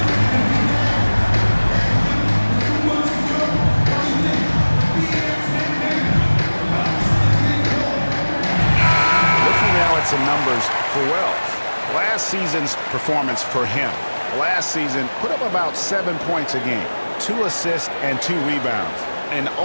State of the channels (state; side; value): inverted; both; correlation -1.00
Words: some numbers for Wells. Last season's performance for him. Last season put up about 7 points a game, 2 assists and 2 rebounds. And